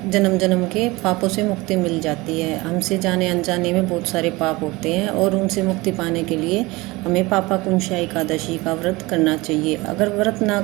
जन्म जन्म के पापों से मुक्ति मिल जाती है। हमसे जाने अनजाने में बहुत सारे पाप होते हैं और उनसे मुक्ति पाने के लिए हमें पापाकुंशा एकादशी का व्रत करना चाहिए। अगर व्रत ना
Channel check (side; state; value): left; quieter; 22.1 dB